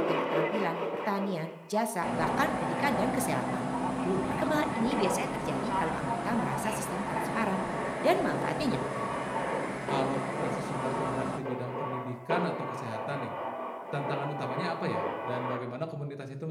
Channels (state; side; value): identical; both; correlation 1.00